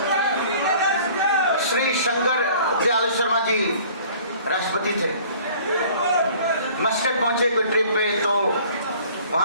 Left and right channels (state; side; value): inverted; both; correlation -0.51